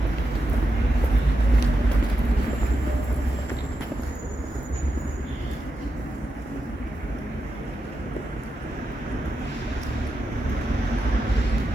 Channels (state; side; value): normal; both; correlation 0.87